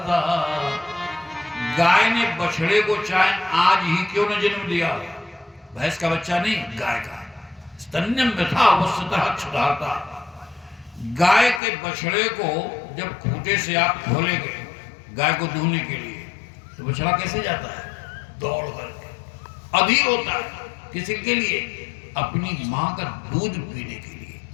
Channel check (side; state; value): right; drops out; at 11.6 s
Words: गाय ने बछड़े को चाहे आज ही क्यों न जन्म दिया, भैंस का बच्चा नहीं, गाय का। स्तन्यं यथा वसितः क्षुधार्ता। गाय के बछड़े को जब खूंटे से आप खोलेंगे गाय को दूहने के लिए, तो बछड़ा कैसे जाता है? दौड़ करके, अधीर होता है। किसी के लिए? अपनी मां का दूध पीने के लिए।